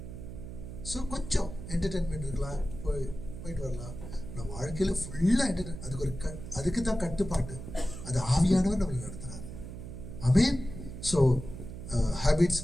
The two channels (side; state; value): right; noise; hum, 10 dB below the sound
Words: ஸோ கொஞ்சம் என்டர்டெயின்மெண்ட் இருக்கலாம், போயிட்டு வரலாம். நான் வாழ்க்கையில ஃபுல்லா என்டர்டெயின், அதுக்கு தான் கட்டுப்பாட்டு. அது ஆவியானவர் நம்மளை நடத்துறாரு. ஆமென். ஸோ ஹேபிட்ஸ்